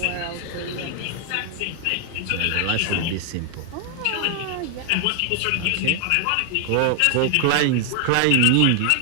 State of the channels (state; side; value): different; both; correlation 0.00